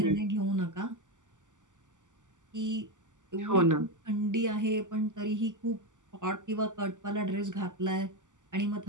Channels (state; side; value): late; left; 0.86 ms